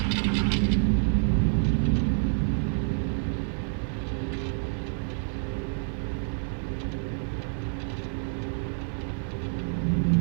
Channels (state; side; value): silent; left; 57 dB below the other